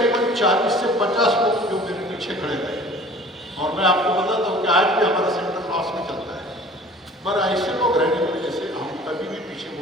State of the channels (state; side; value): normal; both; correlation 0.47